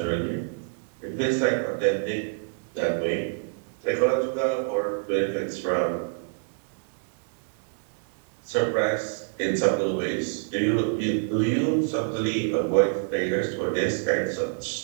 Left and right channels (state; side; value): silent; left; digital silence